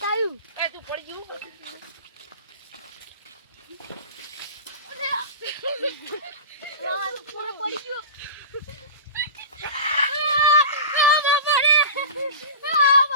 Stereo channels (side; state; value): both; inverted; correlation -0.32